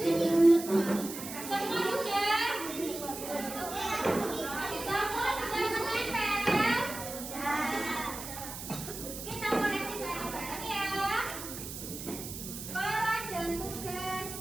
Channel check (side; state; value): right; noise; hiss, 9 dB below the sound